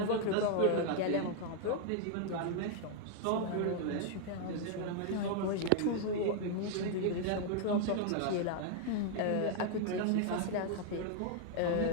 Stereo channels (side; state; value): both; different; correlation 0.00